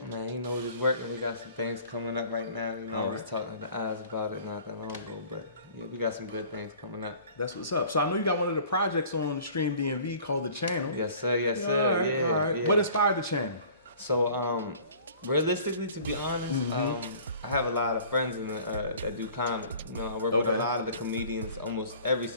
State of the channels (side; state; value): both; inverted; correlation -0.48